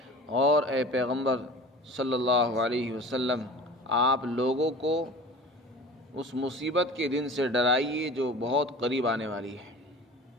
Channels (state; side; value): normal; both; correlation 0.39